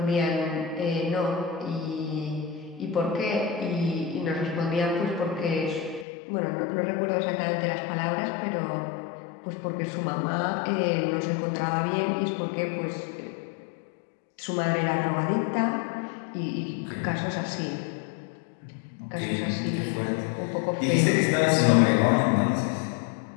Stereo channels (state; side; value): drops out; right; at 6.1 s